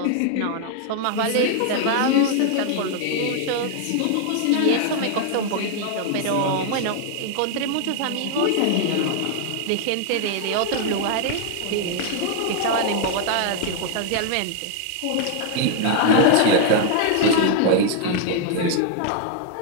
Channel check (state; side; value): different; both; correlation 0.00